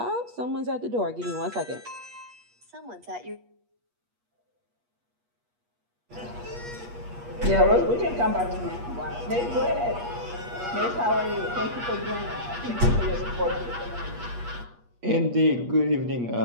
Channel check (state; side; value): late; left; 8.4 ms